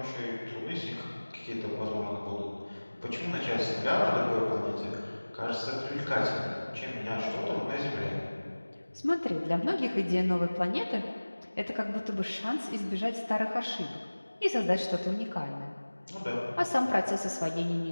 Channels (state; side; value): inverted; both; correlation -1.00